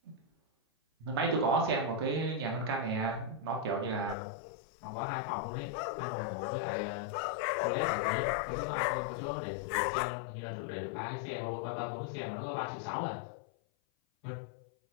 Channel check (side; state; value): right; drops out; at 4.2 s